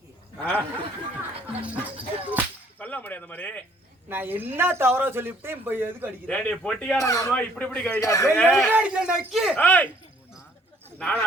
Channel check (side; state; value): both; normal; correlation 0.61